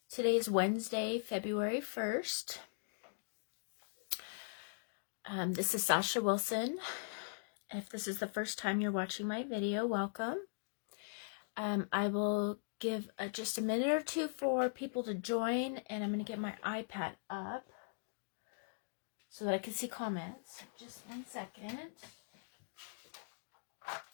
Today is Wednesday, February 1st. This is Sasha Wilson. If this is the first time you're watching my video, welcome. I will give just a minute or two for people to join, and I'm going to get my iPad up so that I can see comments. Just one second.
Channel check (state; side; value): silent; right; digital silence